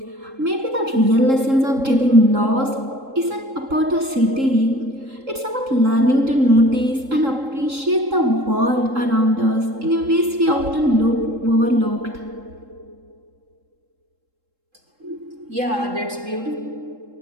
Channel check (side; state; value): left; late; 3.7 ms